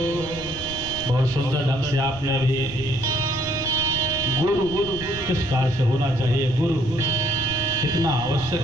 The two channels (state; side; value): noise; left; rumble, 14 dB below the sound